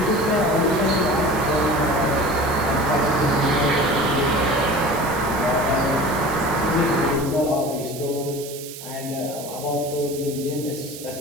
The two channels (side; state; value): right; noise; hiss, 13 dB below the sound